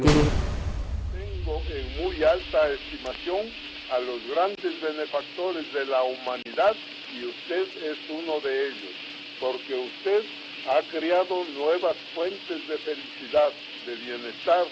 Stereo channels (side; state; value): both; identical; correlation 1.00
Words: Tengo en muy alta estimación a los grandes benefactores de la humanidad y usted es uno de ellos, porque usted ha creado nuevas fuentes de felicidad, de bienestar